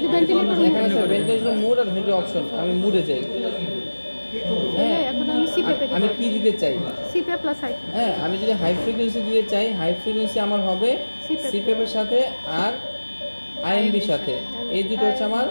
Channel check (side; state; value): both; inverted; correlation -1.00